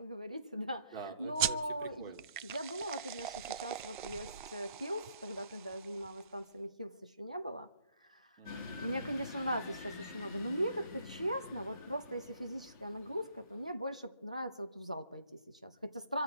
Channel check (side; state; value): both; inverted; correlation -0.66